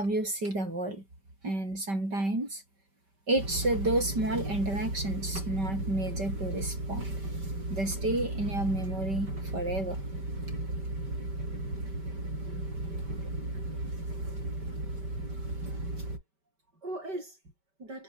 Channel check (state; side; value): late; left; 5.1 ms